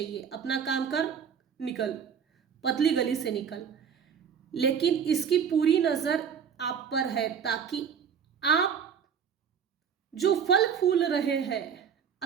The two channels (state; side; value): quieter; left; 7.4 dB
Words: अपना काम कर, निकल, पतली गली से निकल। लेकिन इसकी पूरी नजर आप पर है, ताकि आप जो फल फूल रहे हैं,